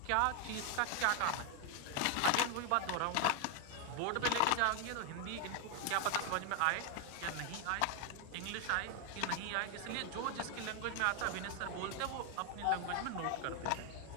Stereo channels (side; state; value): both; different; correlation 0.01